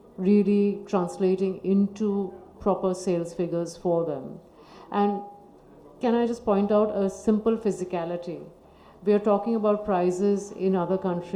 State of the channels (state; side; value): identical; both; correlation 1.00